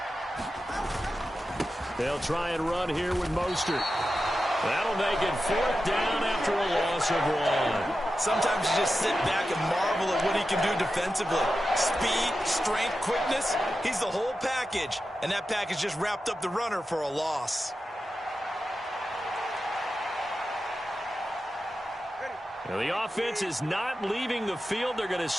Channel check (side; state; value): both; normal; correlation 0.91